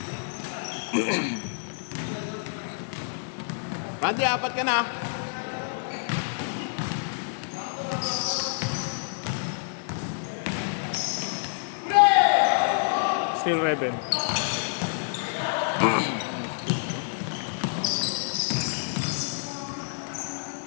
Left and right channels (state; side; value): silent; right; 58 dB below the other